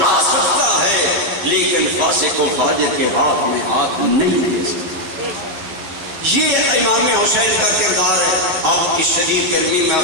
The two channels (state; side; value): late; left; 12 ms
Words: سکتا ہے لیکن فاسق و فاجر کے ہاتھ میں ہاتھ نہیں دے سکتا۔ یہ امام حسین کا کردار ہے۔ آپ کی شدید گرمی میں